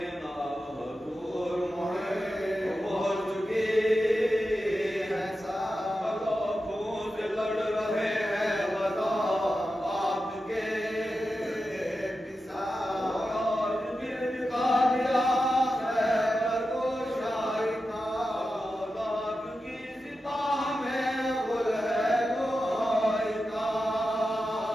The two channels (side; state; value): both; normal; correlation 0.91